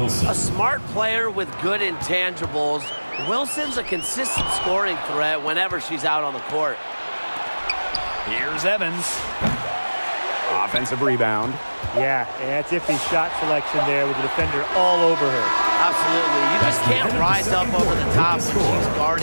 A smart player with good intangibles. Wilson's a consistent scoring threat whenever she's out on the court. Here's Evans. Offensive rebound. Yeah, that's iffy shot selection there with the defender all over her. Absolutely. You just can't rise up over the top when she's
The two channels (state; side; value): inverted; both; correlation -1.00